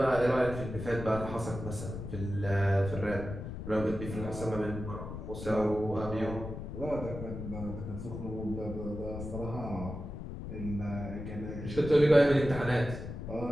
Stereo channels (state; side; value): noise; left; rumble, 8 dB below the sound